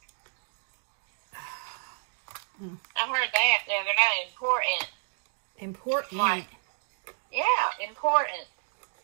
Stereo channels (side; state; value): left; silent; digital silence